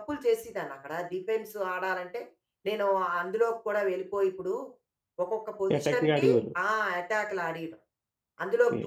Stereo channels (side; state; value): both; identical; correlation 1.00